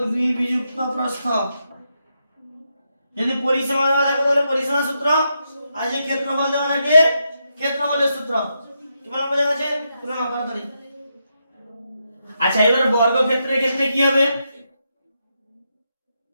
2 বিযুক্ত প্রস্থ। যদি পরিসীমা দেওয়া থাকে তাহলে পরিসীমা সূত্র, আর যদি ক্ষেত্রফল দেওয়া থাকে ক্ষেত্রফলের সূত্র। কি বলা বোঝা গেছে? তুলনা করা ধরি। আচ্ছা, এবার বর্গক্ষেত্রের ক্ষেত্রে কি হবে?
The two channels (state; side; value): inverted; both; correlation -0.83